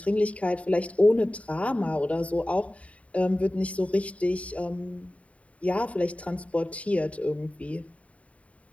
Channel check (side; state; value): right; late; 0.066 ms